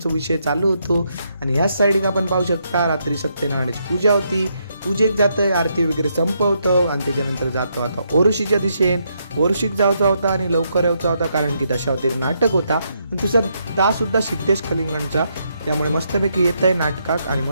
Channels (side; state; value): both; inverted; correlation -0.77